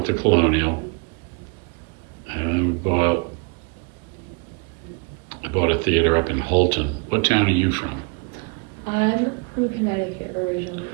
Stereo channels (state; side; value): quieter; left; 33.2 dB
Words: the Colonial, and I bought a theater up in Holton. What town are you from? I'm from Connecticut